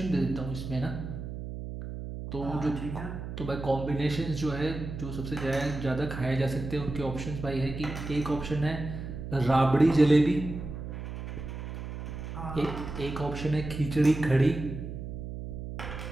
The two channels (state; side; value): noise; right; hum, 7 dB below the sound